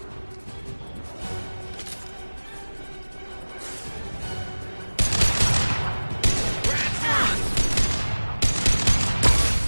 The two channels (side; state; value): both; inverted; correlation -1.00